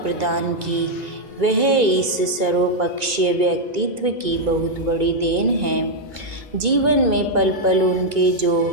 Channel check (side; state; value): left; late; 2.2 ms